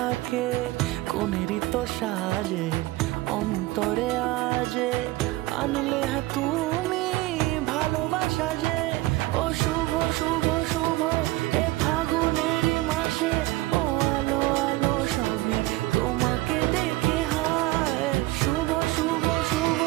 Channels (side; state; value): left; quieter; 18.7 dB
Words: কোনেরই তো সাজে অন্তরে আজে, আনলে হ্যাঁ তুমি ভালোবাসা যে। ও শুভ শুভ শুভ এ ফাগুনেরই মাসে, ও আলো আলো সবই তোমাকে দেখে হায়। শুভ শুভ শুভ